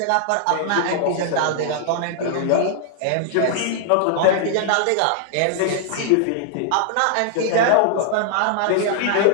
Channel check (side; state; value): both; different; correlation 0.00